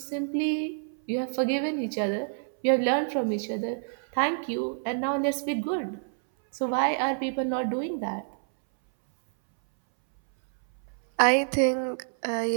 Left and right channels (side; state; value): left; silent; 60 dB below the other